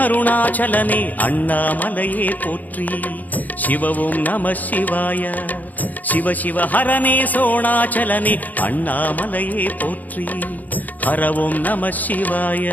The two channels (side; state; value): right; late; 0.081 ms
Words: அருணாச்சலனே அண்ணாமலையே போற்றி. சிவவும் நம சிவாய. சிவ சிவ ஹரனே சோணாச்சலனே அண்ணாமலையே போற்றி. ஹரவும் நம